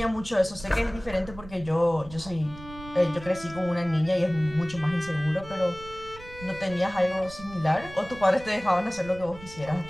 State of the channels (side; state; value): right; noise; rumble, 16 dB below the sound